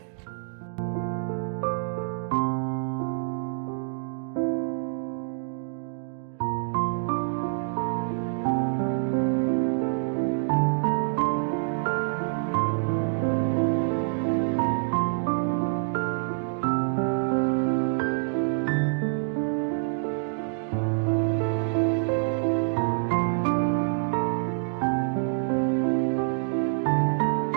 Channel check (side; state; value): left; silent; digital silence